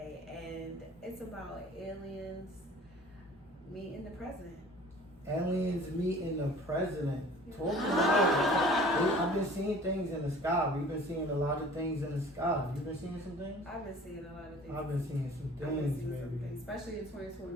and it's about aliens meeting the president. Aliens meeting the president. Talk about it. I've been seeing things in the sky. We've been seeing a lot of things in the sky. You been seeing some things? I've been seeing a lot of things. I've been seeing some things, baby. Especially in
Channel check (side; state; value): both; normal; correlation 0.48